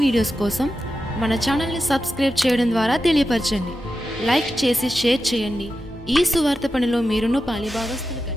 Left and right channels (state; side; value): normal; both; correlation 0.91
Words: వీడియోస్ కోసం మన ఛానల్ని సబ్స్క్రైబ్ చేయడం ద్వారా తెలియపరచండి. లైక్ చేసి షేర్ చేయండి. ఈ సువార్త పనిలో మీరును పాలిభాగస్తులు కండి.